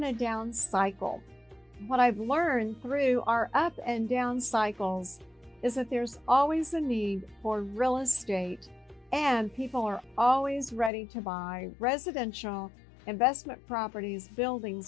a down cycle. What I've learned through our up and down cycles is that there's always a need for real estate, and people are always ready to buy residential, investment properties,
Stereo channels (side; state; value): right; drops out; at 10.9 s